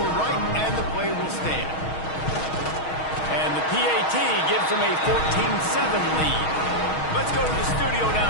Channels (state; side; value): late; right; 6.3 ms